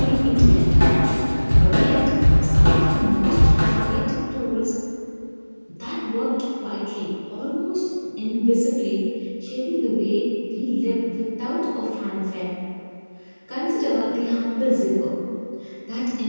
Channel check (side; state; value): both; inverted; correlation -1.00